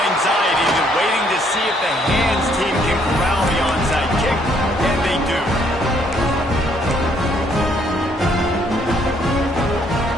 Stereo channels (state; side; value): normal; both; correlation 0.67